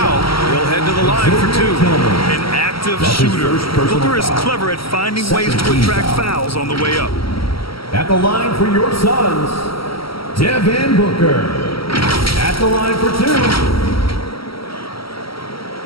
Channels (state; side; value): late; right; 0.75 ms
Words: He'll head to the line for 2. An active shooter. Booker is clever at finding ways to attract fouls on the way up. At the line for your Suns, Devin Booker. At the line for 2.